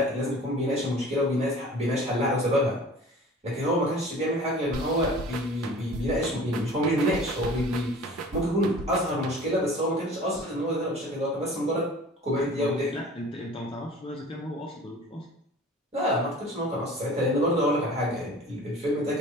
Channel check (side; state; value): both; normal; correlation 0.44